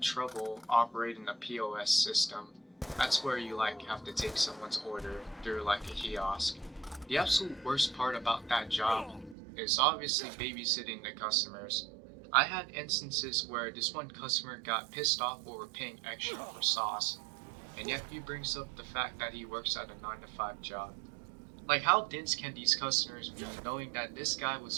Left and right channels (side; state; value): left; drops out; at 9.3 s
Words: trouble operating the POS system. That's where you like have to take someone's order through like a kiosk. The absolute worst part about that job is obviously babysitting the customers. I had instances where this one customer got pissed off over paying extra for sauce, and yet he brings up the fact that he works at a 9 to 5 job. Like, how dense can these customers be knowing that this guy was